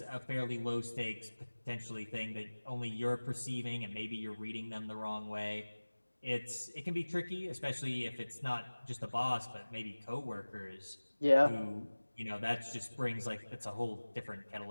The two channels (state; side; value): inverted; both; correlation -1.00